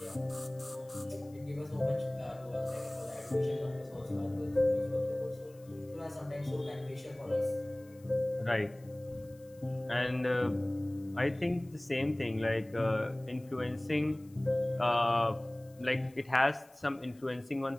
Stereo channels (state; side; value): noise; left; hiss, 28 dB below the sound